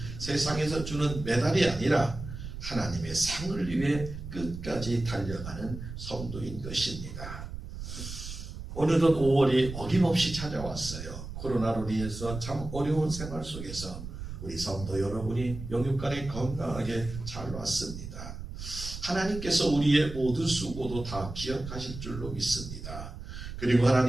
세상에서 주는 메달이 아니라 하나님의 상을 위해 끝까지 달려가는 성도인 것입니다. 어느덧 5월이 어김없이 찾아왔어요. 코로나로 인해서 참 어려운 생활 속에서 우리 성도 여러분이 영육간에 건강하게 잘 왔습니다. 하나님께서 우리의 모든 수고도 다 기억하실 줄로 믿습니다. 그리고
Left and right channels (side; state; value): right; noise; rumble, 9 dB below the sound